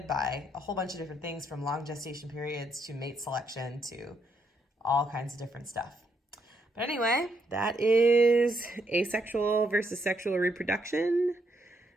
by a whole bunch of different things, from long gestation periods to mate selection to all kinds of different stuff. But anyway, that is asexual versus sexual reproduction.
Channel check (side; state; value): both; normal; correlation 0.76